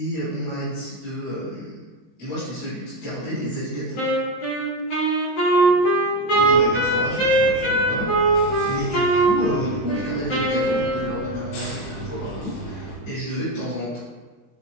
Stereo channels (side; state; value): right; late; 25 ms